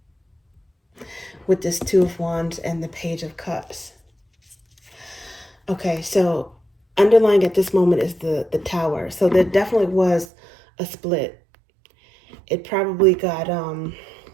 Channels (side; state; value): left; drops out; at 10.2 s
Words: With this Two of Wands and the Page of Cups. Okay, so underlying at this moment is the Tower. So there definitely was a split. It probably got